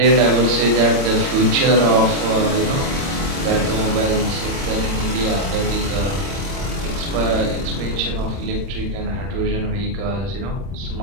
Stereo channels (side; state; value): left; late; 30 ms